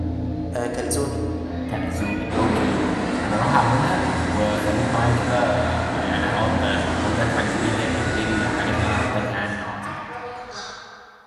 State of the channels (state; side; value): identical; both; correlation 1.00